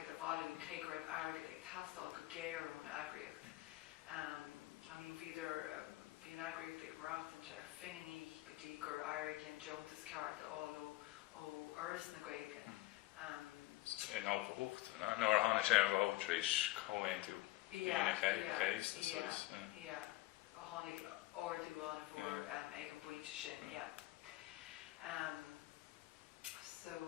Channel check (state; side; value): quieter; right; 18.4 dB